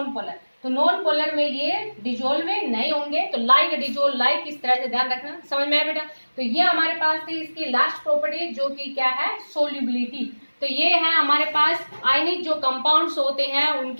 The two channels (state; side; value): inverted; both; correlation -1.00